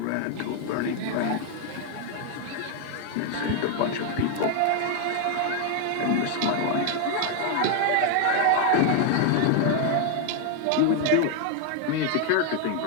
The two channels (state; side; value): different; both; correlation 0.00